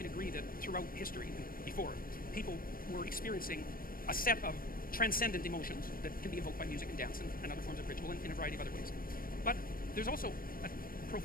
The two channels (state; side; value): late; right; 0.41 ms